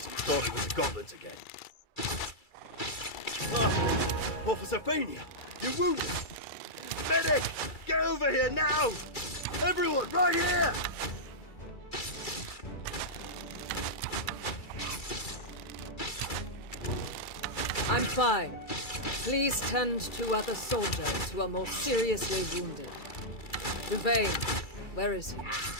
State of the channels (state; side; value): late; right; 2.3 ms